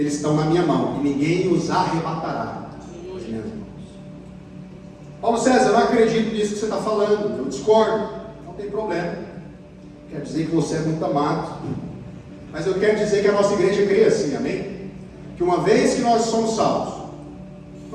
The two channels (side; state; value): both; identical; correlation 1.00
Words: estão na minha mão, e ninguém os arrebatará das minhas mãos. Paulo César, eu não acredito nisso que você está falando, eu discordo. Não tem problema. Quer dizer que você é muito amado, mas eu quero dizer que a nossa igreja crê assim, amém? Que uma vez que nós somos salvos,